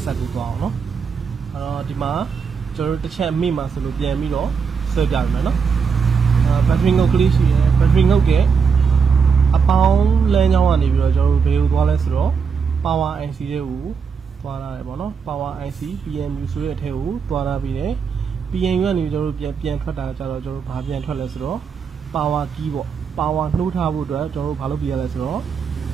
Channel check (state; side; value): quieter; left; 5.9 dB